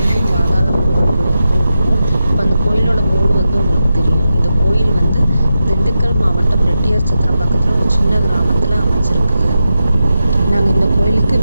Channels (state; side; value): inverted; both; correlation -0.89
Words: பாதாள முருகன் கோயிலுக்கு இருக்கோம். இப்போ அந்த கோயிலோட போர்டு வந்து உங்களுக்கு தெரியும். இந்த கோயில் வந்து திண்டுக்கல் மாவட்டம் ரெட்டியார் சத்திரம் பக்கத்தில் ஒரு சின்ன கிராமத்தில் அமைச்சிருக்குது. நாங்கள் இந்த கோயிலுக்கு